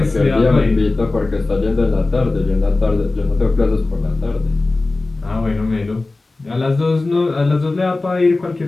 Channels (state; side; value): quieter; right; 3.3 dB